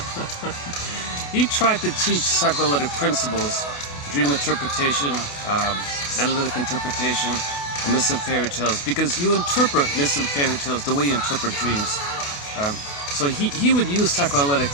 He tried to teach psychoanalytic principles, dream interpretation, analytic interpretation, and myths and fairy tales, because you interpret myths and fairy tales the way you interpret dreams. So he would use psychoanalytic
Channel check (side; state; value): right; late; 28 ms